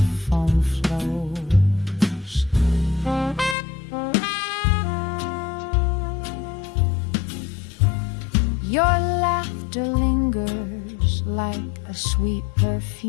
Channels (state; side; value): drops out; right; at 3.6 s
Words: flows. Your laughter lingers like a sweet